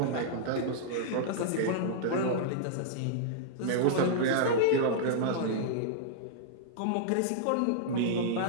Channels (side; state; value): both; different; correlation -0.02